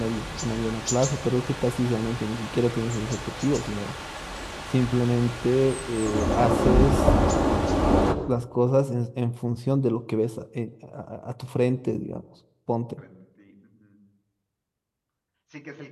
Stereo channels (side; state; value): both; identical; correlation 1.00